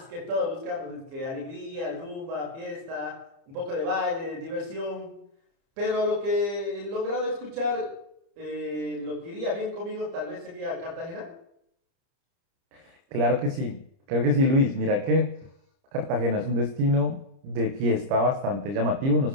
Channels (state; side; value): late; left; 30 ms